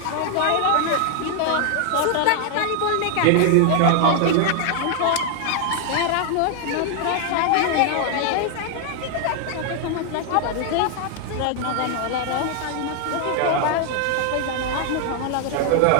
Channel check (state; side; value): different; both; correlation 0.00